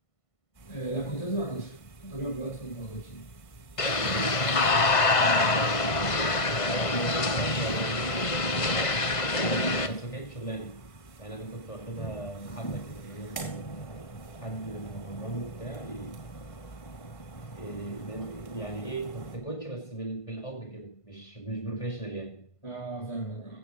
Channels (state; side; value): late; right; 1.5 ms